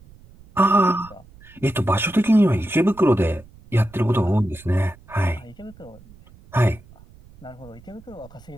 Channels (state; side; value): noise; right; rumble, 24 dB below the sound